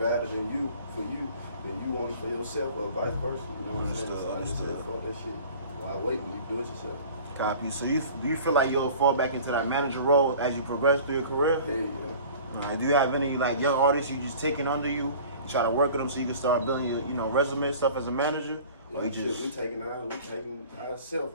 than you, for you, than you want it for yourself, or vice versa, you know what I'm saying? So I just said, fuck that shit. Why wait when you do it yourself? Copy. So do you feel like you'll fall back into that manager role as you progress through your career? Yeah. Do you have any like young artists you just taking under you, try to work with them so you can start building your resume and stuff as a manager? Or we taking ourselves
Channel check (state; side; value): inverted; both; correlation -0.44